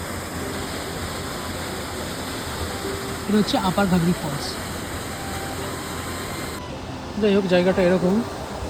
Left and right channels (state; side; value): identical; both; correlation 1.00